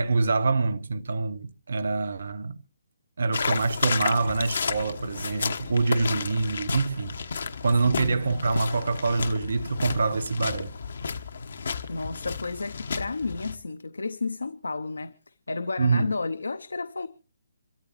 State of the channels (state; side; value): inverted; both; correlation -0.88